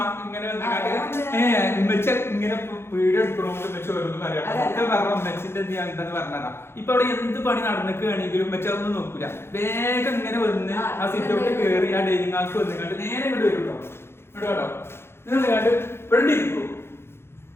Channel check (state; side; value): late; right; 0.12 ms